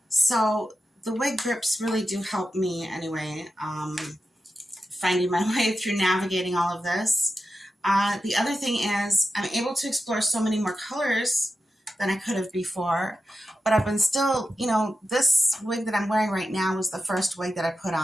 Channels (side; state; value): both; normal; correlation 0.90